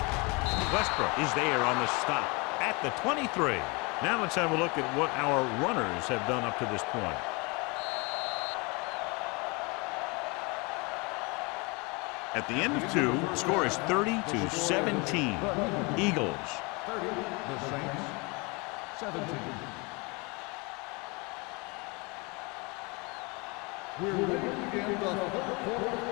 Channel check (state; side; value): quieter; right; 28.6 dB